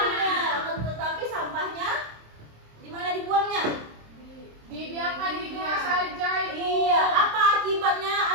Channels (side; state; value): left; late; 27 ms